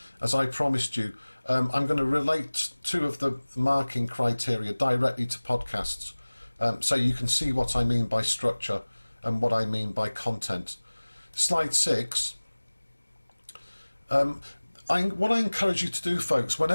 As I promised you, I'm going to relate two of the marking criteria directly to podcasts, so you can see what I mean by structure and what I mean by content. Slide 6. What I encourage you to do, folks,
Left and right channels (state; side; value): inverted; both; correlation -1.00